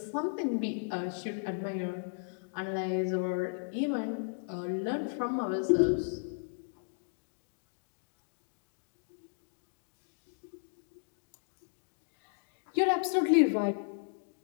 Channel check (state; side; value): silent; right; digital silence